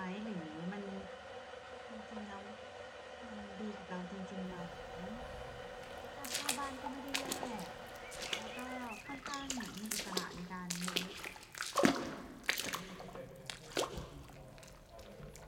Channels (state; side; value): identical; both; correlation 1.00